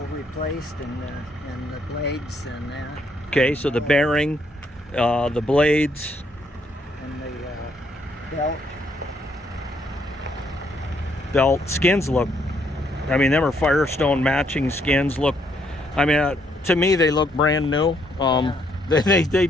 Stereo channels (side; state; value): both; normal; correlation 0.71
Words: replaced and the blades and that. Okay, so the bearing, the blades. And the belt. Belt skins look, I mean, them are Firestone matching skins. Look, I mean, to me they look brand new. They